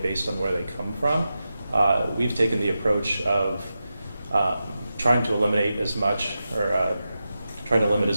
based on where they come from. We've taken the approach of trying to eliminate as much trying to limit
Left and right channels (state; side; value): inverted; both; correlation -0.91